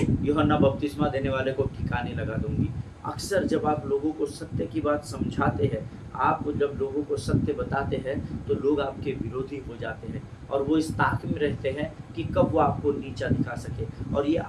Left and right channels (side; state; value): both; identical; correlation 1.00